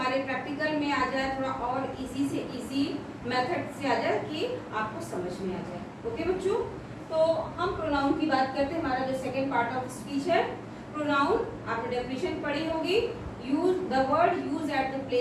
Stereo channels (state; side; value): identical; both; correlation 1.00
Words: प्रैक्टिकल में आ जाए, थोड़ा और इजी से इजी मेथड से आ जाए कि आपको समझ में आ जाए. ओके बच्चों, तो हम प्रोनाउन की बात करते हैं. हमारा जो सेकेंड पार्ट ऑफ स्पीच है प्रोनाउन, आपने डेफिनेशन पढ़ी होगी. Use the word use at the